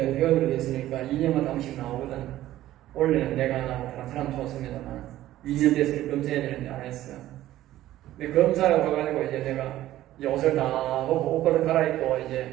회원으로 됐으니까 2년마다 한 번씩 나오거든. 원래는 내가 나오고 다른 사람 좋습니다만 2년 돼서 검사해야 되는데 안 했어. 근데 검사를 가가지고 이제 내가 이제 옷을 다 벗고 옷을 갈아입고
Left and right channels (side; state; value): left; quieter; 14.2 dB